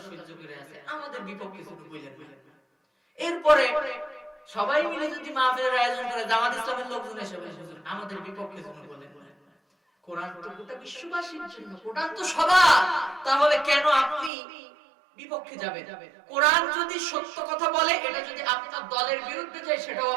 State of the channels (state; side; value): drops out; left; at 14.3 s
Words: সহ্য করে আছে, আমাদের বিপক্ষে শুধু বলেন না। এরপরে সবাই মিলে যদি মাহফিলের আয়োজন করে, জামাত ইসলামের লোকজন এসে বলে, হুজুর আমাদের বিপক্ষে শুধু বলেন না। কোরআন তো গোটা বিশ্ববাসীর জন্য, কোরআন তো সবার, তাহলে কেন আপনি বিপক্ষে যাবেন? কোরআন যদি সত্য কথা বলে, এটা যদি আপনার দলের বিরুদ্ধে যায়, সেটাও